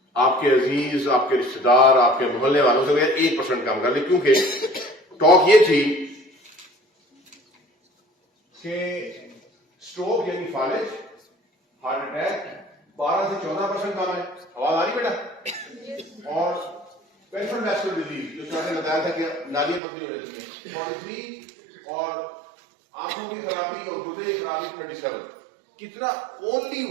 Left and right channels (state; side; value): drops out; left; at 19.8 s